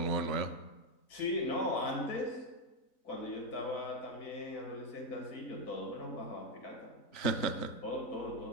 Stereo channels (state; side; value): late; right; 3.9 ms